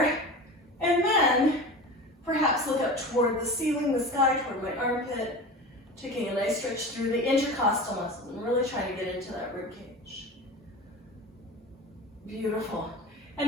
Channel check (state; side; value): normal; both; correlation 0.32